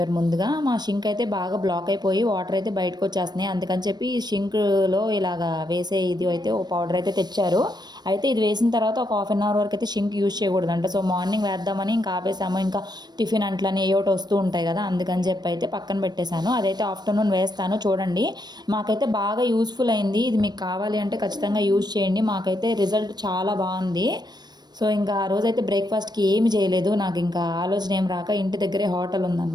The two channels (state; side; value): late; left; 0.20 ms